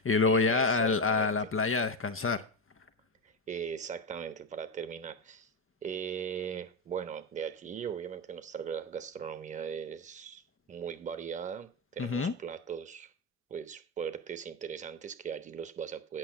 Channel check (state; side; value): normal; both; correlation 0.12